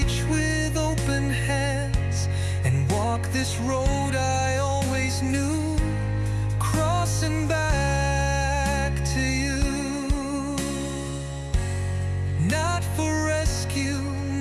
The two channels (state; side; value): identical; both; correlation 1.00